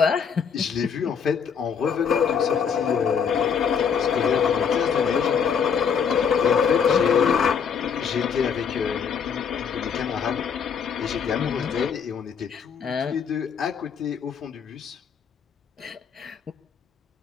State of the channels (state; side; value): quieter; right; 6.8 dB